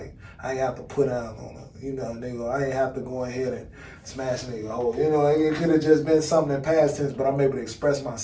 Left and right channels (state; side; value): identical; both; correlation 1.00